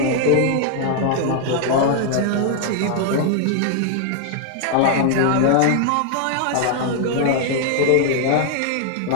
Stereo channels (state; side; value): different; both; correlation 0.00